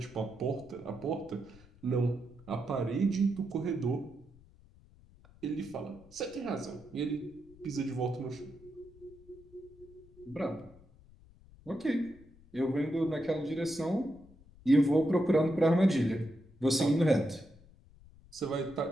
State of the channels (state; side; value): noise; left; rumble, 24 dB below the sound